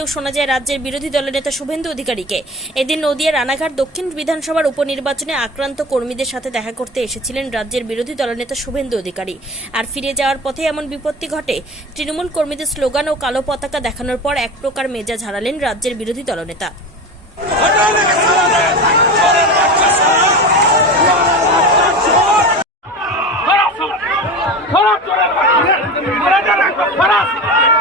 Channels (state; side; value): normal; both; correlation 0.29